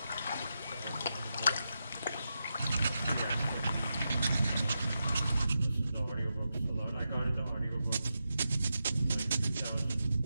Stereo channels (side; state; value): both; inverted; correlation -0.88